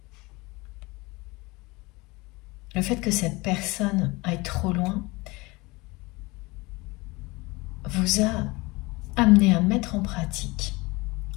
Le fait que cette personne aille trop loin vous a amené à mettre en pratique,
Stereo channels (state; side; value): quieter; right; 23.7 dB